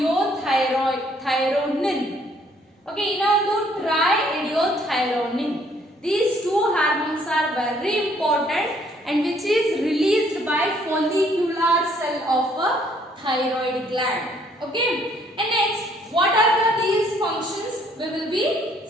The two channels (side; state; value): both; normal; correlation 0.64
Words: ಓಕೆ, ಇನ್ನೊಂದು try ಎಡಿಯೋಥೈರೋನಿನ್. These two hormones are very important and which is released by follicular cell of a thyroid gland. Okay, and next what are these functions we will be